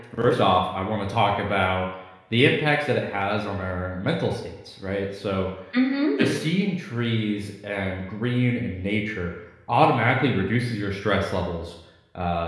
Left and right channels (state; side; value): identical; both; correlation 1.00